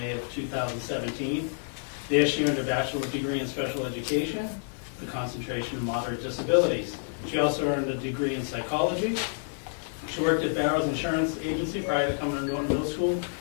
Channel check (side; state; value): right; silent; digital silence